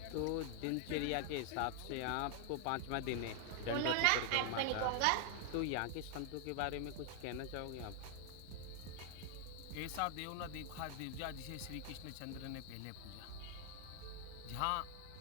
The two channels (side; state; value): both; different; correlation 0.00